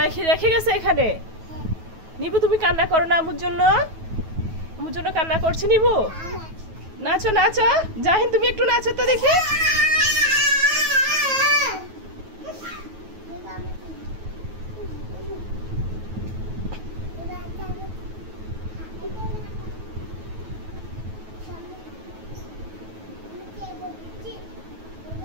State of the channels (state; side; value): late; left; 9.3 ms